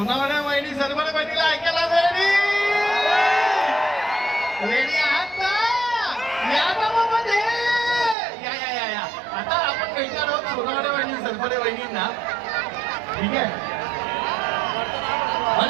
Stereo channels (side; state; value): left; drops out; at 8.2 s